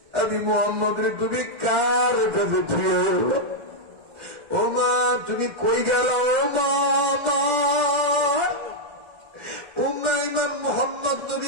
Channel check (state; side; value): late; left; 1.4 ms